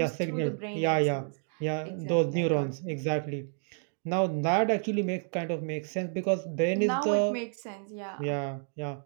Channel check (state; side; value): silent; left; 58 dB below the other